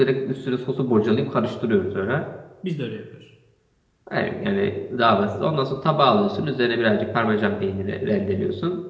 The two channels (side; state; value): both; identical; correlation 1.00